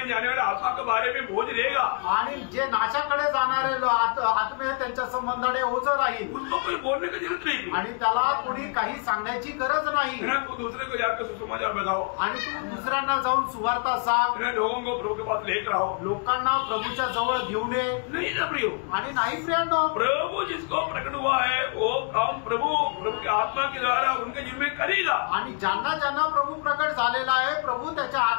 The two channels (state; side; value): quieter; right; 39.1 dB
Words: जाने वाले आत्मा के बारे में बोझ रहेगा आणि जे नाशाकडे जाणारे आत्मे त्यांच्या संबंधाने ओझ राहील। उनको कोई बोलने की जरूरत नहीं आणि त्याला कोणी काही सांगण्याची गरज नाही। तू दूसरे को जाकर सुसमाचार बताओ आणि तू दुसऱ्यांना जाऊन सुवार्ता सांग। लोगों को प्रभु के पास लेकर आओ, लोकांना प्रभूच्या जवळ घेऊन ये। नहीं ना प्रियो, आणि नाही प्रियांनो, प्रभु जिसको प्रकट हुआ है वो काम प्रभु के आत्मा के द्वारा उनके जीवन में करेगा। आणि ज्यांना ज्यांना प्रभु प्रकट झालेला आहे, प्रभु त्याच्या